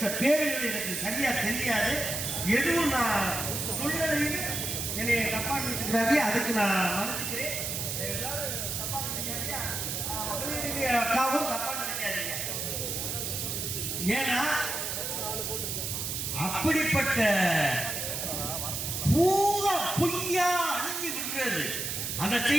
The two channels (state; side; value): noise; right; hiss, 3 dB below the sound